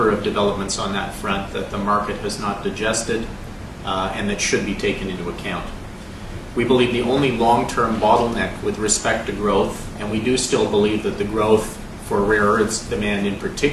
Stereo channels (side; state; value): both; identical; correlation 1.00